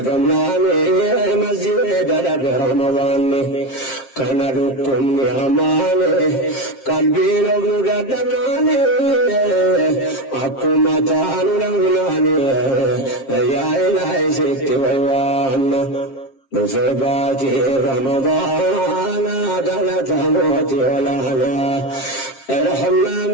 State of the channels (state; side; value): late; right; 7.5 ms